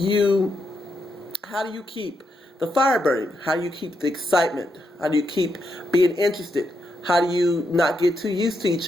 How do you keep the fire burning? How do you keep the excitement? How do you keep being interested? How do you not get too used to each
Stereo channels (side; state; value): both; normal; correlation 0.82